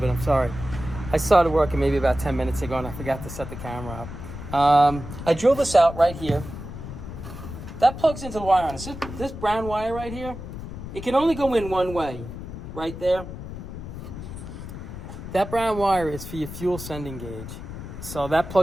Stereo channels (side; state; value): left; noise; rumble, 10 dB below the sound